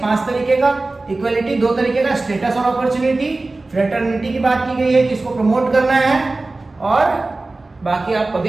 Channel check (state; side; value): quieter; left; 3.2 dB